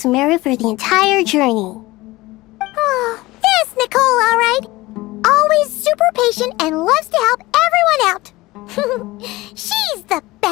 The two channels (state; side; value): quieter; right; 19.8 dB